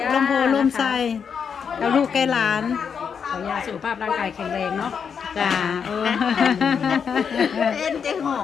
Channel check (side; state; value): right; quieter; 6.8 dB